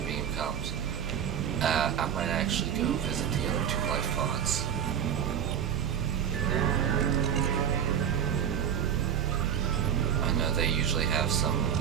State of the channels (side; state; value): left; quieter; 8.8 dB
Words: comes, I might actually go visit the other two life pods. I know they usually have some